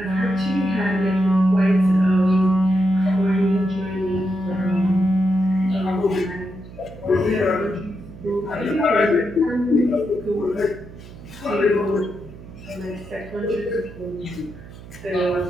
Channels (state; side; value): noise; right; hum, 17 dB below the sound